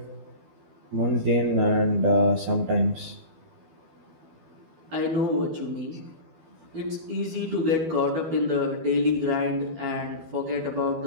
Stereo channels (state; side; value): late; left; 12 ms